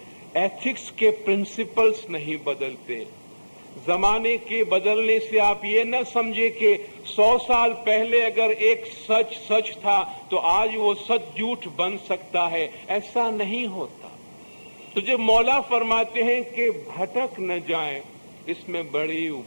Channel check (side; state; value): both; inverted; correlation -1.00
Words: ایتھکس کے پرنسپلز نہیں بدلتے، زمانے کے بدلنے سے آپ یہ نہ سمجھے کہ 100 سال پہلے اگر ایک سچ تھا تو آج وہ سچ جھوٹ بن سکتا ہے، ایسا نہیں ہوتا. تو جب مولا فرماتے ہیں کہ بھٹک نہ جائیں اس میں بڑی